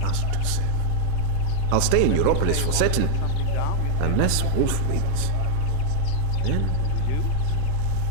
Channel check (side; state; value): both; different; correlation 0.00